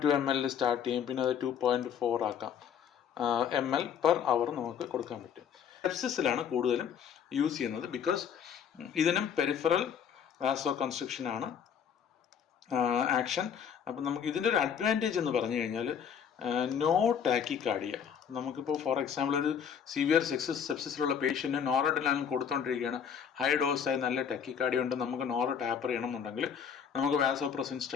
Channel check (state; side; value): quieter; right; 7.8 dB